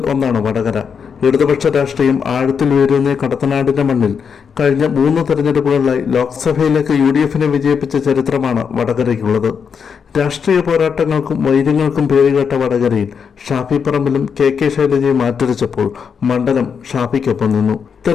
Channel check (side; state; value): right; quieter; 6.6 dB